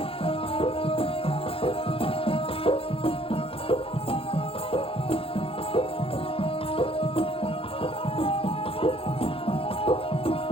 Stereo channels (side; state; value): right; late; 0.27 ms